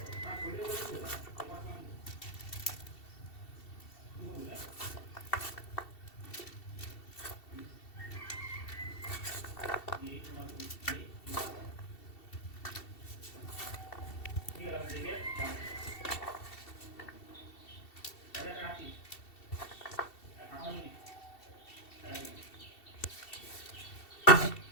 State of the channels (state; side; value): late; right; 2.7 ms